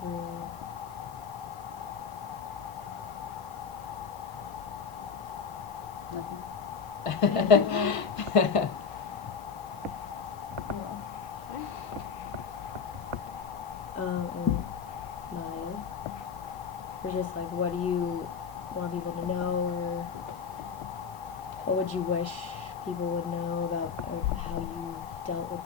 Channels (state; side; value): quieter; right; 6.1 dB